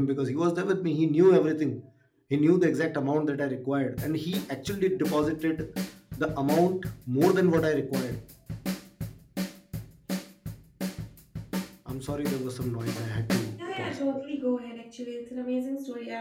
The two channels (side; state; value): both; identical; correlation 1.00